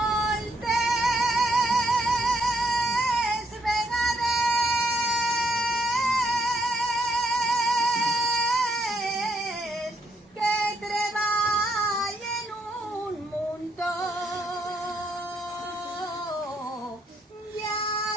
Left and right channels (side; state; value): both; normal; correlation 0.73